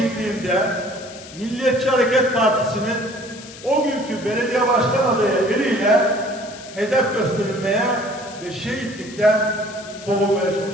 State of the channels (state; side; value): noise; left; hiss, 17 dB below the sound